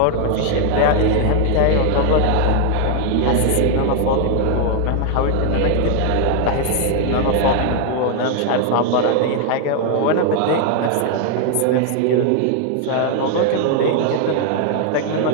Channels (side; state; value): both; different; correlation 0.00